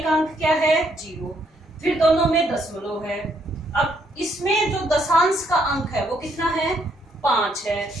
अंक क्या है, जीरो। फिर दोनों में दशमलव है। अब इसमें जो दशांश का अंक है वो कितना है, 5 है।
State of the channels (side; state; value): both; normal; correlation 0.72